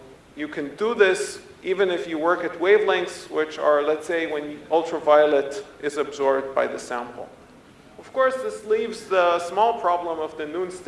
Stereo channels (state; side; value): identical; both; correlation 1.00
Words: you can do this even if you work at wavelengths which are, let's say, when ultraviolet is absorbed by the sample. Of course, this leaves the small problem of the noon